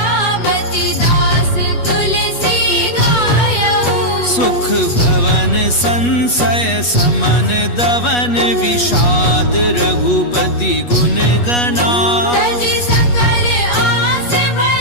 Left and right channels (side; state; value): right; late; 8.3 ms